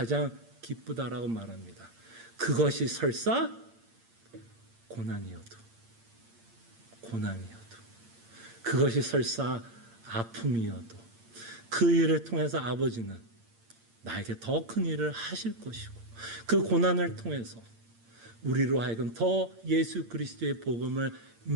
기쁘다라고 말합니다. 그것이 설사 고난이어도 그것이 설사 아픔이어도 그 일을 통해서 아버지는 나에게 더 큰 일을 하실 것이고 그 고난을 통해서 우리로 하여금 더 예수 그리스도의 복음을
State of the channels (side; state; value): left; late; 8.7 ms